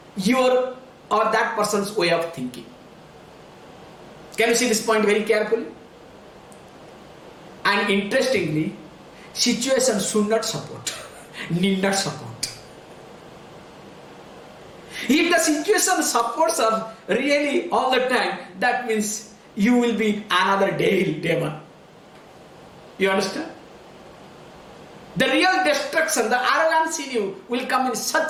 your or that person's way of thinking. Can you see this point very carefully? And interestingly, situation should not support, need not support. If the situation supports us really all the time, that means you will be another demon. You understand? The real destruction, the arrogance in you will come in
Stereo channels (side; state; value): both; identical; correlation 1.00